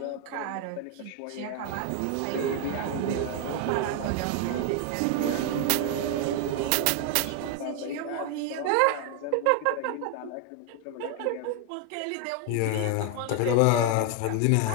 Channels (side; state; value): both; different; correlation 0.00